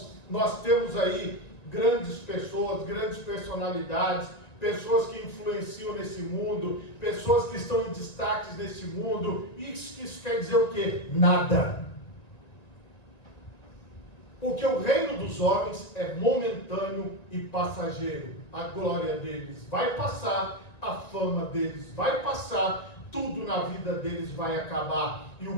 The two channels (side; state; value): right; late; 1.9 ms